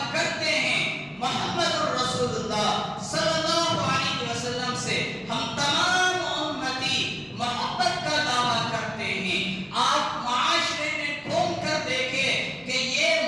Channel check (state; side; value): identical; both; correlation 1.00